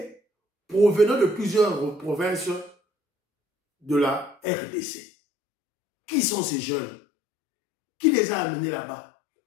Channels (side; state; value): right; drops out; at 4.4 s